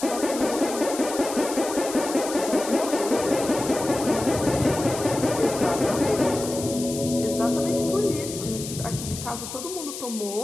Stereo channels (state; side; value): noise; left; hiss, 9 dB below the sound